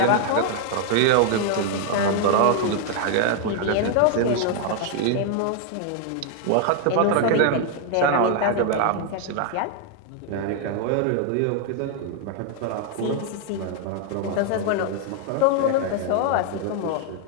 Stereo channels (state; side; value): different; both; correlation 0.00